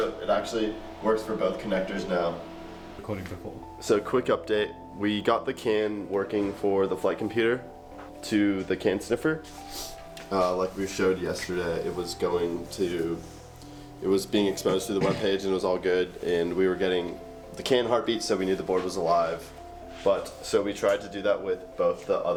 it actually works for both connectors now. Recording before. So quick update, we got the CAN working for the flight computer to the CAN sniffer. Like we showed yesterday, it was being exposed to the web page and it was all good, and we were getting the CAN heartbeat, so we knew the board was alive. But so we tried to do that with both the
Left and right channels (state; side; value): identical; both; correlation 1.00